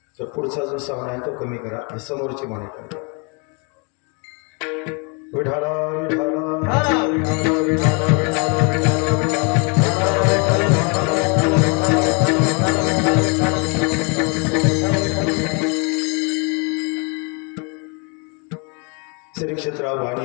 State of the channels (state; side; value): quieter; right; 34.3 dB